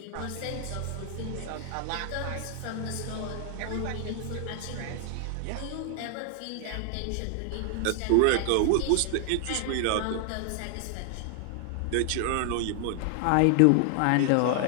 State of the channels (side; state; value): both; different; correlation 0.00